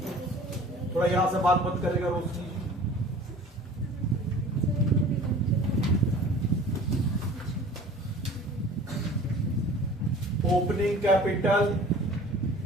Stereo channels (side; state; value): both; normal; correlation 0.45